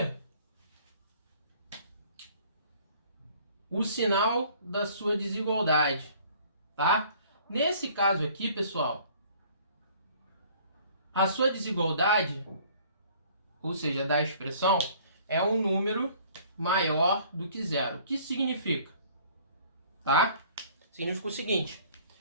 o sinal da sua desigualdade, tá? Nesse caso aqui, pessoal, a sua desigualdade, ou seja, da expressão, é um número maior do que zero. O que isso significa? Tá? Significa o seguinte,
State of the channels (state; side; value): inverted; both; correlation -0.54